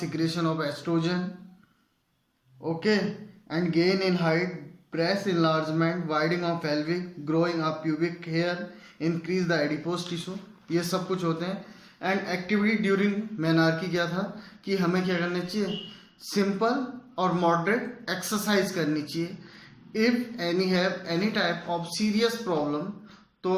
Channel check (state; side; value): identical; both; correlation 1.00